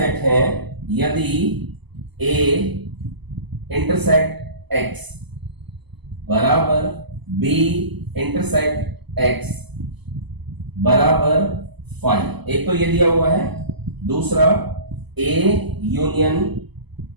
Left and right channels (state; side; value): late; left; 0.99 ms